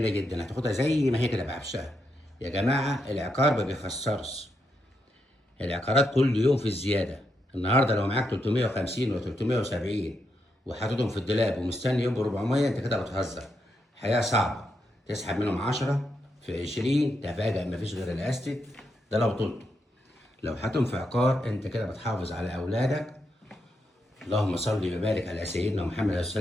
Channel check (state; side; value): normal; both; correlation 0.82